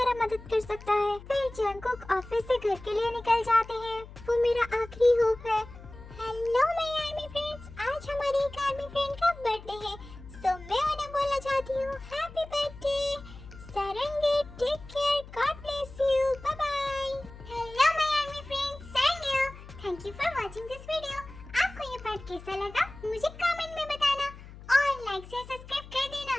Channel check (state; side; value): noise; left; hum, 16 dB below the sound